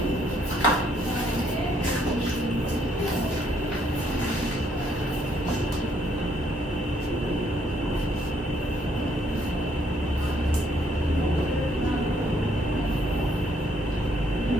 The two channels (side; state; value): both; normal; correlation 0.69